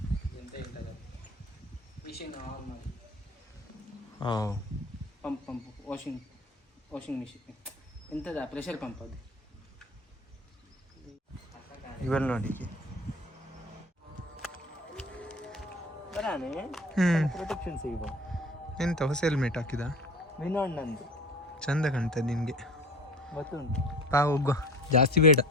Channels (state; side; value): normal; both; correlation 0.40